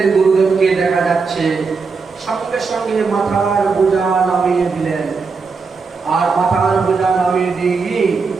গুরুদেবকে দেখা যাচ্ছে, সঙ্গে সঙ্গে মাথার বোঝা নামিয়ে দিলেন। আর মাথার বোঝা নামিয়ে দিয়ে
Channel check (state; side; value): quieter; left; 4.8 dB